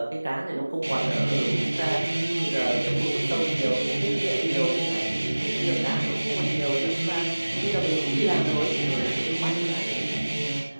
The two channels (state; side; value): inverted; both; correlation -1.00